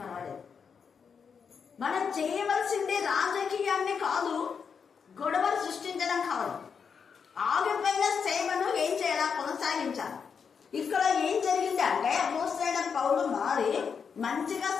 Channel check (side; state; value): right; quieter; 6.3 dB